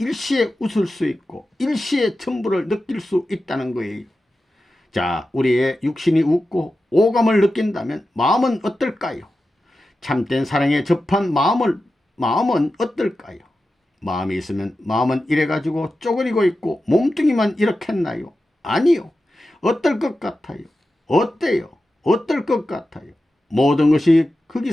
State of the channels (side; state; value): both; normal; correlation 0.92